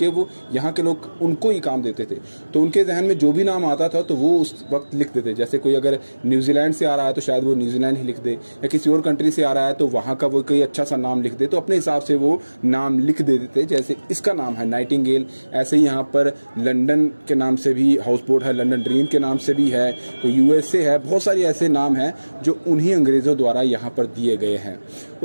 वो यहाँ के लोग उनको ही काम देते थे। तो उनके जहन में जो भी नाम आता था तो वो उस वक्त लिख देते। जैसे कोई अगर न्यूजीलैंड से आ रहा है तो शायद वो न्यूजीलैंड ही लिख दे, या किसी और कंट्री से आ रहा है तो वहाँ का वो कोई अच्छा सा नाम लिख दे, तो अपने हिसाब से वो नाम लिख दे देते। जैसे इसका नाम है नाइटिंगेल, ऐसे ही यहाँ पर लंदन के नाम से भी हाउस बोट है, लंदन ड्रीम के नाम से भी है, तो USA है, बहुत सारी ऐसे नाम हैं जो उन्हीं अंग्रेजों द्वारा यहाँ पर दिए गए हैं।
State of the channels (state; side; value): inverted; both; correlation -1.00